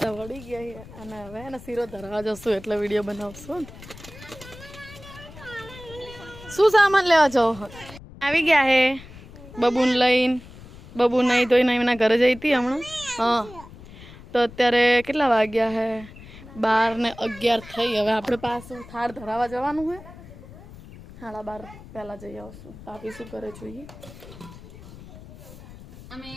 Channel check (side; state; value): left; noise; rumble, 17 dB below the sound